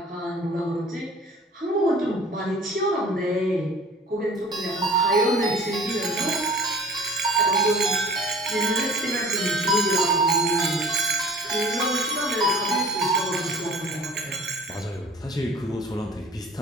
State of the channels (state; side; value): normal; both; correlation 0.46